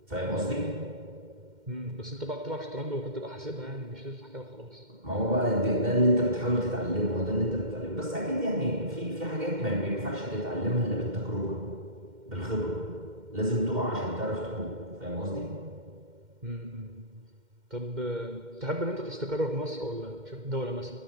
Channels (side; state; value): left; late; 2.1 ms